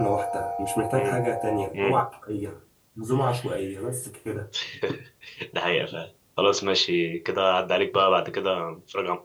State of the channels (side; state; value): both; identical; correlation 1.00